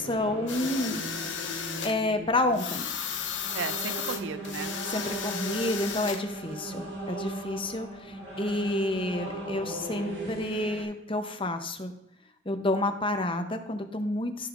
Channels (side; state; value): both; normal; correlation 0.41